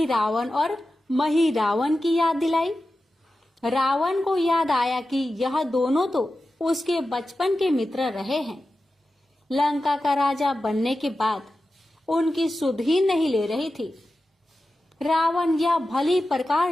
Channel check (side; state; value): both; normal; correlation 0.93